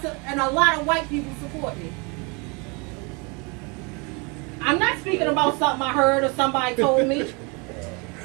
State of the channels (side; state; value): left; quieter; 30.8 dB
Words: a lot of white people support me. I'm not speaking about something I heard or somebody told me.